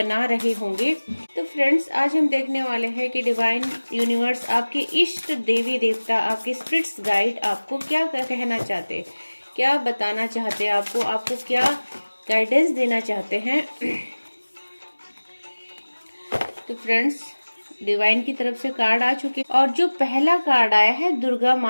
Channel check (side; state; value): both; inverted; correlation -1.00